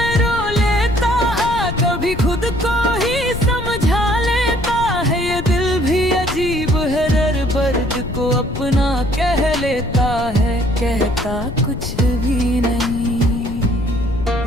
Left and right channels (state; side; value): noise; left; rumble, 8 dB below the sound